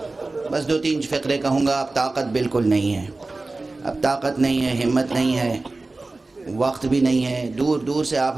بس 2-3 فقرے کہوں گا. اب طاقت بالکل نہیں ہے, اب طاقت نہیں ہے, ہمت نہیں ہے, وقت بھی نہیں ہے. دور دور سے آپ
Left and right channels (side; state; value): left; quieter; 3.3 dB